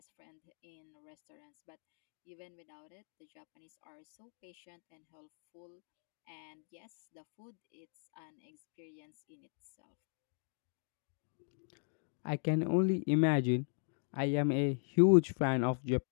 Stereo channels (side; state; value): right; silent; 52 dB below the other